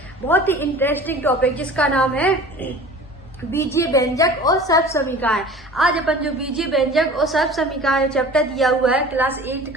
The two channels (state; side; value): normal; both; correlation 0.41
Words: बहुत ही इंटरेस्टिंग टॉपिक जिसका नाम है बीजीय व्यंजक और सर्व समीकरण। आज अपन जो बीजीय व्यंजक और सर्व समीकरण चैप्टर दिया हुआ है क्लास 8